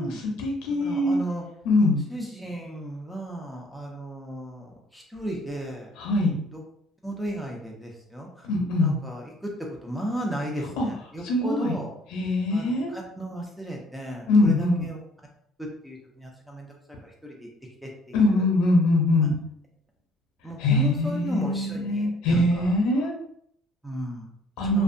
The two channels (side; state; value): both; normal; correlation 0.59